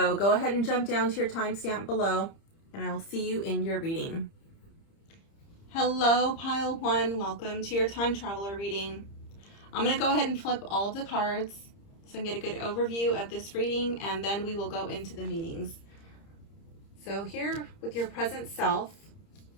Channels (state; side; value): late; right; 30 ms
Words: go ahead and jump down to your timestamp below, and I will see you in your reading. Hello, pile 1. Welcome to your time traveler reading. I'm going to go ahead and flip all of the cards so I can get a good overview of this reading, and then we will go into the meanings. So here with your present self,